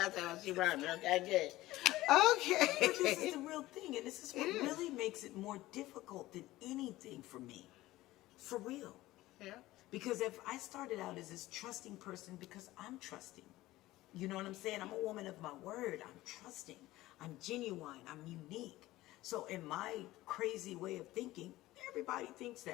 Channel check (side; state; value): right; quieter; 17.2 dB